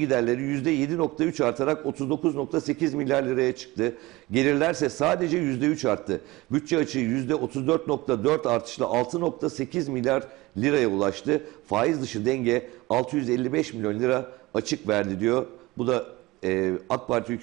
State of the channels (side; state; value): left; quieter; 20.2 dB